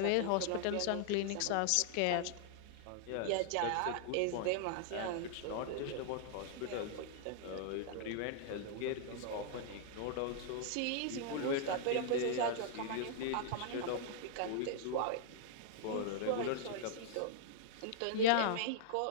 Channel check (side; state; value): both; different; correlation -0.01